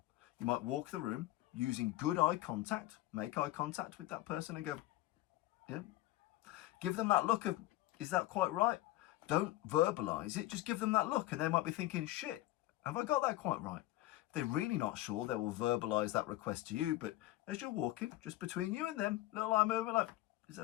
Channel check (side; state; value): right; quieter; 16.6 dB